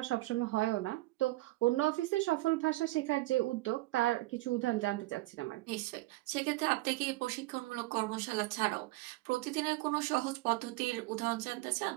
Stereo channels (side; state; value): left; quieter; 19.4 dB